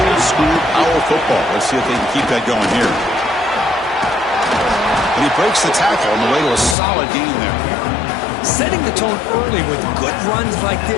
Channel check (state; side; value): drops out; right; at 6.8 s